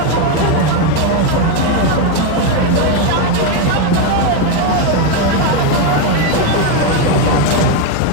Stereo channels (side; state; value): both; different; correlation 0.02